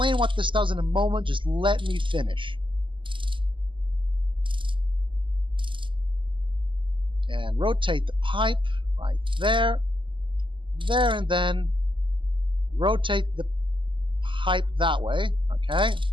what this does in a moment. Just let me finish. And rotate the pipe right there, there, and then rotate the pipe that way, okay?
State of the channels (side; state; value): left; late; 0.24 ms